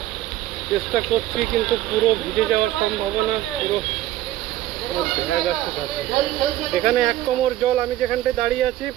চেষ্টা করছি, কিন্তু পুরো ভিজে যাওয়ার সম্ভাবনা, পুরো এখানে 1 কোমর জল। আমি যেখানটায় দাঁড়িয়ে আছি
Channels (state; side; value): quieter; left; 14.1 dB